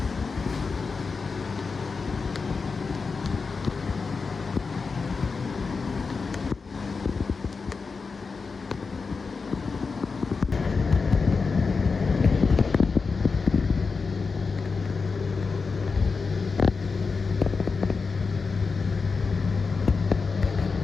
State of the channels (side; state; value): right; quieter; 4.7 dB